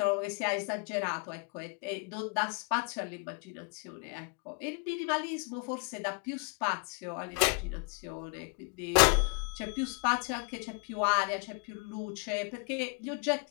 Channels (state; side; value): quieter; right; 34.6 dB